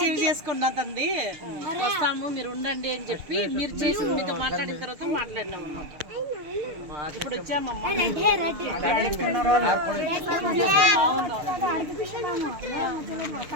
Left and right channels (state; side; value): late; left; 6.6 ms